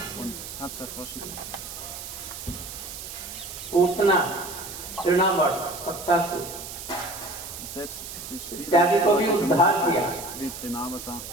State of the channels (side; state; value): right; noise; hiss, 10 dB below the sound